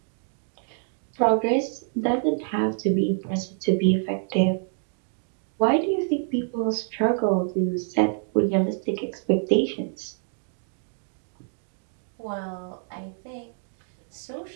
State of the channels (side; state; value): left; silent; 56 dB below the other